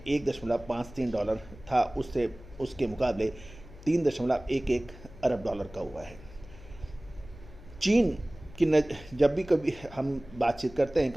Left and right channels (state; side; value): noise; left; hum, 18 dB below the sound